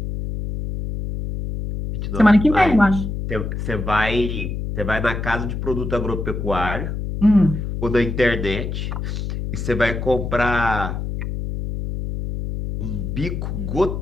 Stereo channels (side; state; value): left; noise; hum, 4 dB below the sound